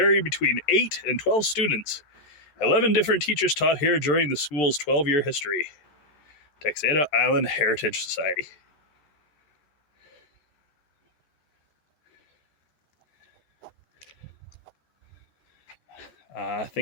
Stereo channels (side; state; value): right; late; 13 ms